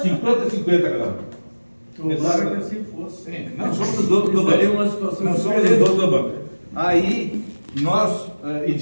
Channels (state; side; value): inverted; both; correlation -1.00